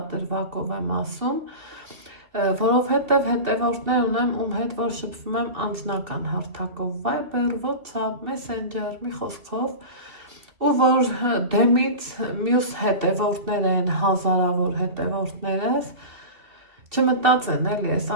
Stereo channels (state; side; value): late; left; 2.7 ms